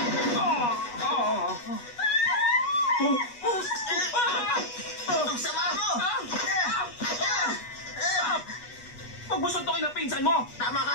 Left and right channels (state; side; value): late; right; 8.3 ms